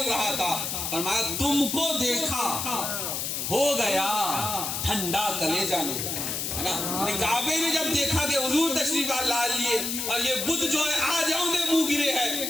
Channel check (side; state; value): left; noise; hiss, 2 dB below the sound